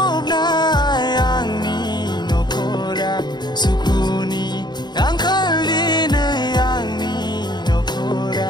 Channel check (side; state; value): right; late; 0.21 ms